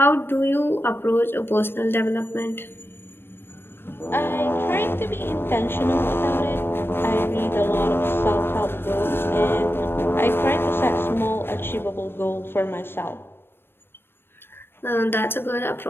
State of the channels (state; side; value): late; right; 0.10 ms